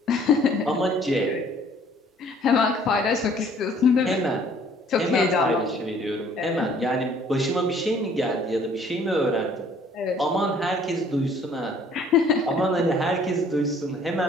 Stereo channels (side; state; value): both; normal; correlation 0.58